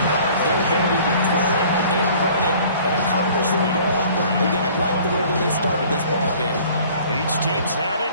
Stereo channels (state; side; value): inverted; both; correlation -0.51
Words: Their ability to throw it and run it and accomplish their goal. Again, I like the way that they started this ball game. Each team's had